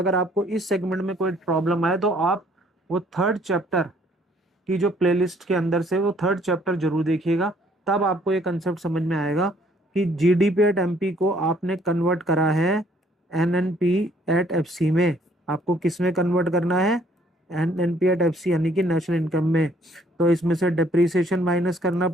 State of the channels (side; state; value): both; normal; correlation 0.62